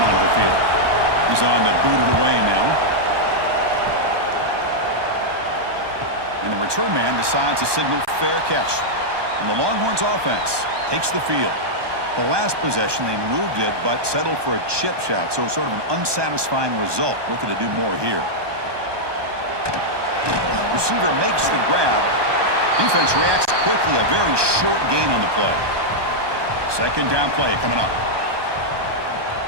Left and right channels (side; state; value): left; late; 1.2 ms